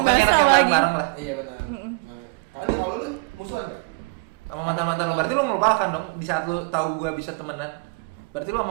enak bakso yang lagi. bareng-bareng lah. Iya benar. Kalau lu musuhan enggak? Sama mantan-mantan lo, berarti lo melupakan dong di saat lo tahu gue bisa temenan. Berarti lo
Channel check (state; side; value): quieter; left; 31.7 dB